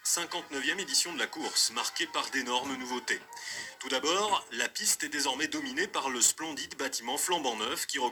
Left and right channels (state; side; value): identical; both; correlation 1.00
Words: 59e édition de la course, marquée par d'énormes nouveautés. Tout d'abord, la piste est désormais dominée par le splendide bâtiment flambant neuf qui